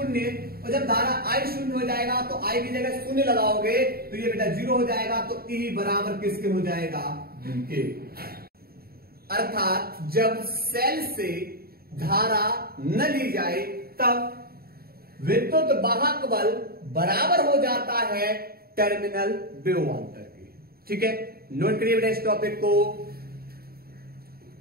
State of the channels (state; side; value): late; left; 0.44 ms